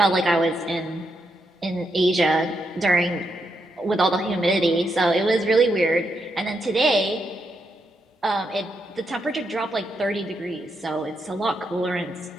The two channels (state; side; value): normal; both; correlation 0.81